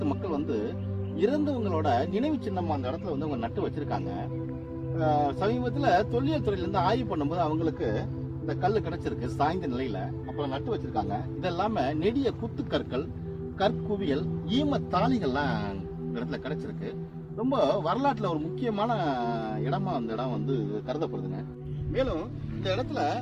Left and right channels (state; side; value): identical; both; correlation 1.00